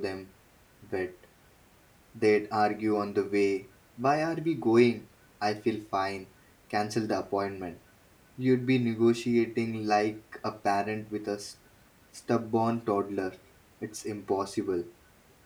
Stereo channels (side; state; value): both; identical; correlation 1.00